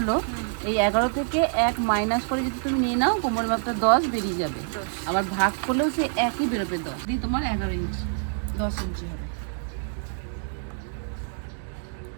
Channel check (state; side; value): silent; left; 61 dB below the other